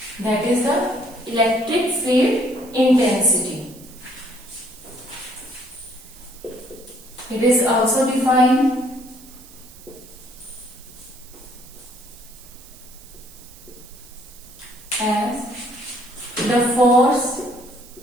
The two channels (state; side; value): noise; right; hiss, 21 dB below the sound